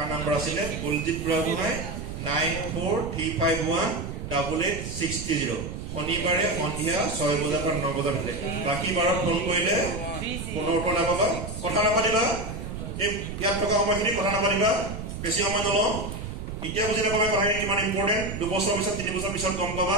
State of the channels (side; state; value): right; noise; rumble, 7 dB below the sound